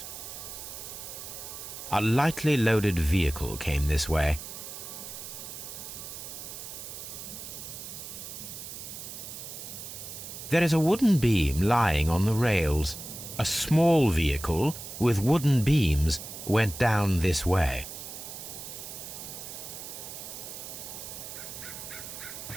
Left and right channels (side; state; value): right; noise; hiss, 10 dB below the sound